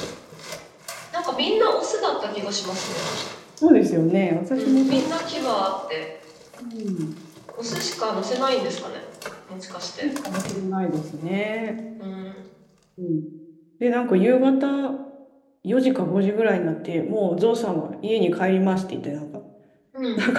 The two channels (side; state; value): both; identical; correlation 1.00